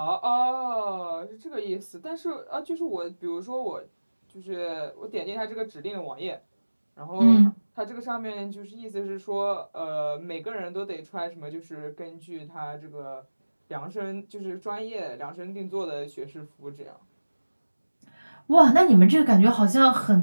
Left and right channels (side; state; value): both; inverted; correlation -1.00